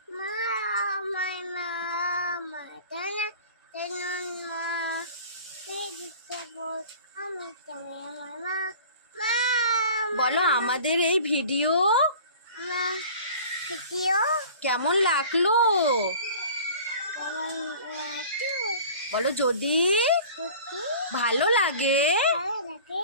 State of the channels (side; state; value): both; inverted; correlation -0.44